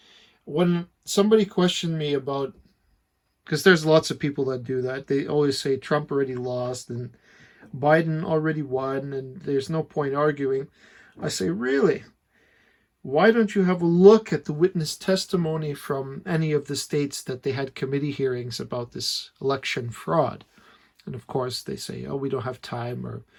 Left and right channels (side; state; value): both; identical; correlation 1.00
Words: When somebody questioned me about, because there's lots of people that do that, they always say Trump already lost and Biden already won and there's no point arguing. I say, really? Why don't you have a look at the witness testimony from any of the states that they had committee hearings about this election fraud? And of course they say, oh, we don't have time, or